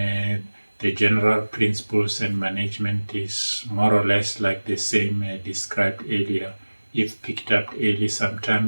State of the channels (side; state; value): both; inverted; correlation -1.00